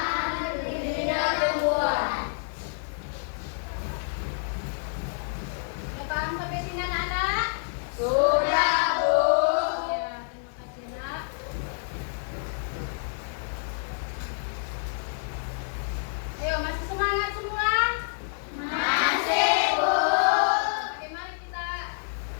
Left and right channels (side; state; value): right; silent; digital silence